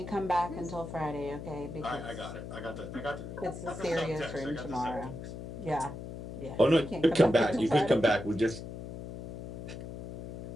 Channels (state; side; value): noise; left; hum, 10 dB below the sound